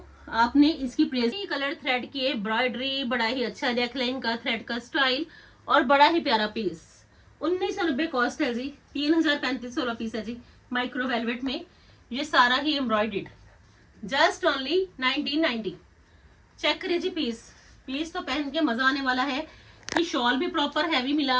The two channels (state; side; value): identical; both; correlation 1.00